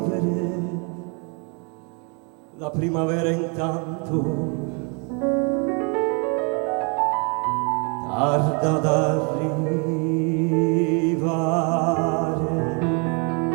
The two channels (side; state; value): left; quieter; 35.3 dB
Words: la primavera intanto tarda ad arrivare.